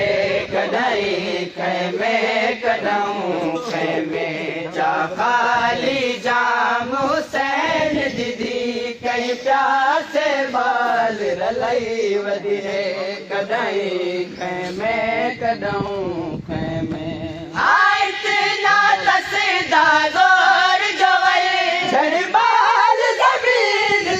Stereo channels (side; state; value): both; identical; correlation 1.00